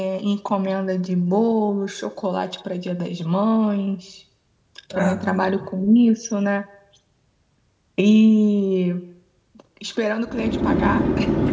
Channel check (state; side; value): identical; both; correlation 1.00